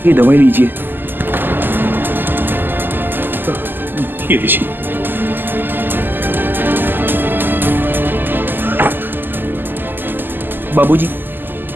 ये दवाई लीजिए। ये लीजिए। बाबूजी,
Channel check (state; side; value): late; left; 0.092 ms